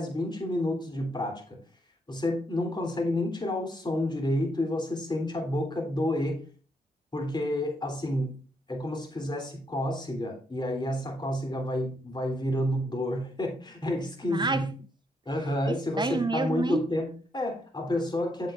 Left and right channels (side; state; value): both; normal; correlation 0.77